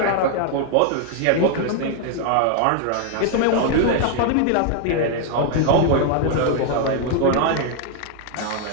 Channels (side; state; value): both; different; correlation 0.00